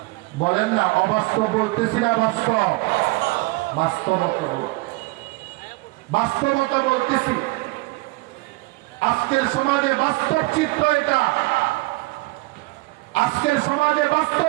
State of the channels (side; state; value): left; quieter; 23.0 dB